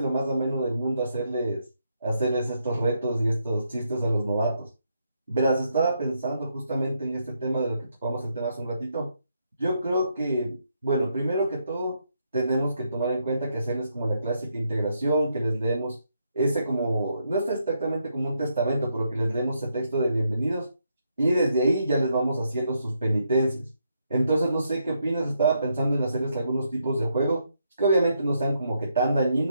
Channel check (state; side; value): inverted; both; correlation -0.78